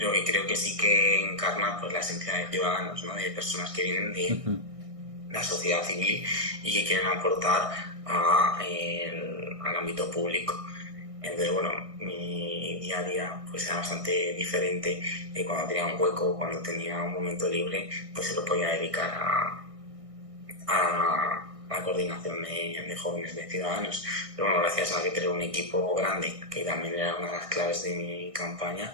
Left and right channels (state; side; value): late; left; 1.6 ms